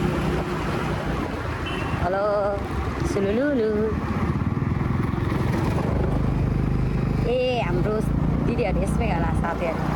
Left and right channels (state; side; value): identical; both; correlation 1.00